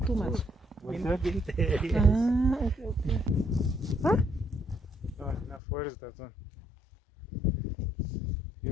Too much. Winter. Winter. Yes. Ah, okay. Huh? No, enough. Where is that one? You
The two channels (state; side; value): drops out; right; at 5.6 s